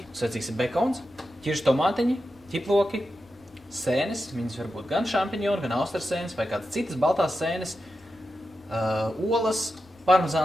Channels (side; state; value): both; normal; correlation 0.90